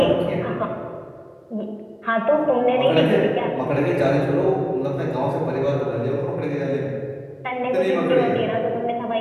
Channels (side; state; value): both; identical; correlation 1.00